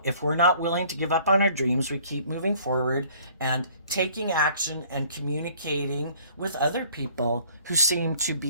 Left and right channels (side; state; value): both; inverted; correlation -0.55